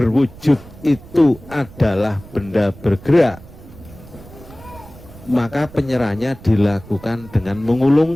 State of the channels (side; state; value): right; noise; rumble, 19 dB below the sound